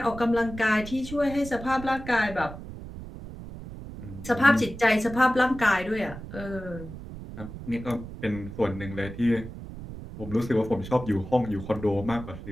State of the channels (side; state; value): right; noise; rumble, 12 dB below the sound